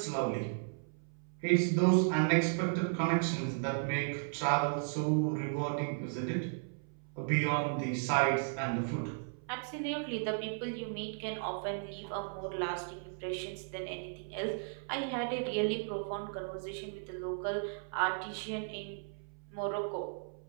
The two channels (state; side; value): silent; left; 54 dB below the other